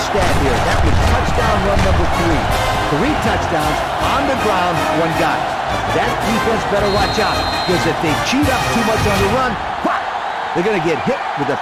here. That was touchdown run number 3. 3 touchdowns on the ground, 1 guy. That defense better watch out, because if they cheat up too much on the run, whop, they're going to get hit with a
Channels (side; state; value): both; identical; correlation 1.00